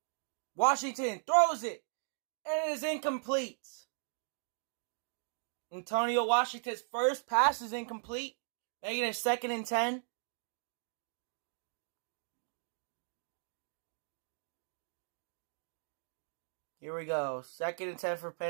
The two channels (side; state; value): left; silent; digital silence